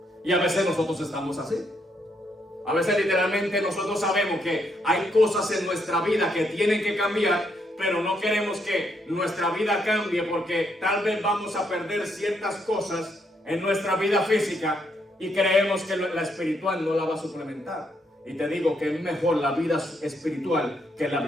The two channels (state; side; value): normal; both; correlation 0.75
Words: Y a veces nosotros estamos así. A veces literalmente nosotros sabemos que hay cosas en nuestra vida que tienen que cambiar, pero no queremos que nuestra vida cambie porque tal vez vamos a perder ciertas cosas en nuestra vida física y creemos que la espiritual no la va a suplementar. Y te digo que es mejor la vida espiritual que la